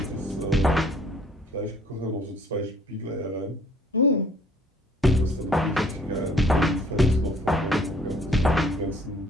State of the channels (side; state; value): both; normal; correlation 0.58